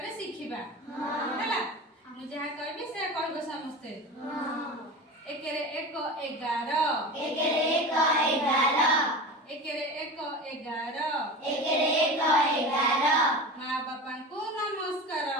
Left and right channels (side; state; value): both; normal; correlation 0.30